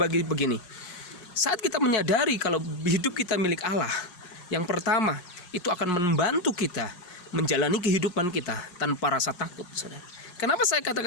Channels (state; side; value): late; right; 5.5 ms